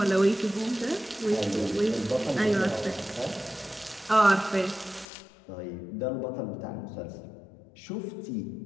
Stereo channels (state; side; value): drops out; right; at 5.1 s